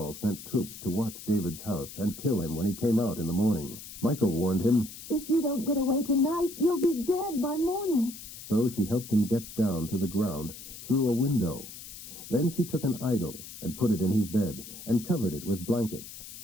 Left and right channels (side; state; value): left; noise; hiss, 13 dB below the sound